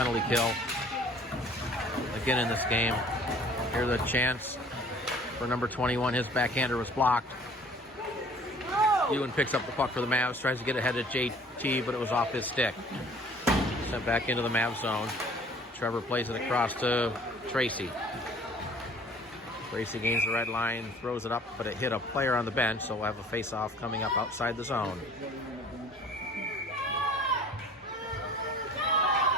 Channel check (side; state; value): both; normal; correlation 0.51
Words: kill again in this game. Here's a chance for number 21. His backhander was blocked. Ewan picks up the puck for the Mavs, tries to get ahead of JT, but it was off his stick. Sent back into the Mavs zone. Trevor plays it across to Tracy. Tracy gains the red line, throws it up, but it hit a player on the bench, so we'll have a face-off coming up outside the zone.